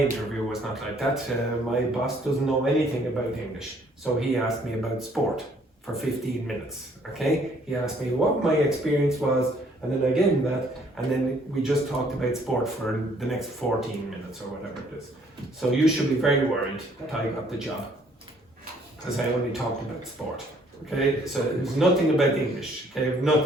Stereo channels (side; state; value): both; normal; correlation 0.63